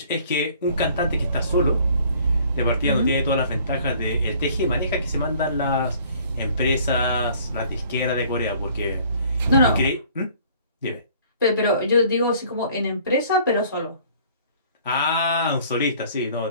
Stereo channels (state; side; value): inverted; both; correlation -0.55